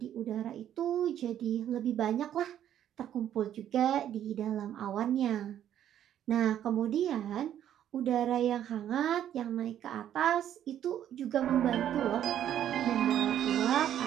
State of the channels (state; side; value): quieter; left; 10.7 dB